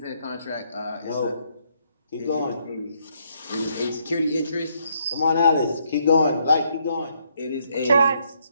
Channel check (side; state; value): both; inverted; correlation -0.72